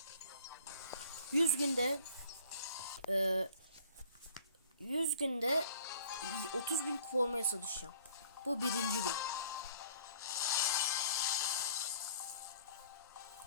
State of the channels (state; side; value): inverted; both; correlation -0.53